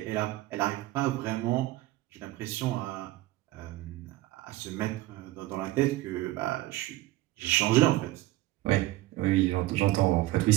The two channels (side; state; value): left; quieter; 17.2 dB